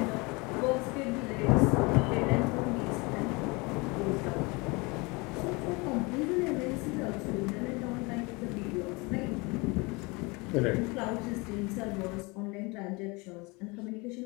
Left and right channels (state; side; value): quieter; right; 26.9 dB